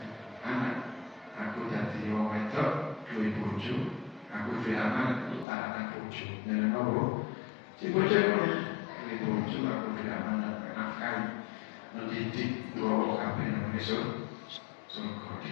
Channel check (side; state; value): right; drops out; at 5.5 s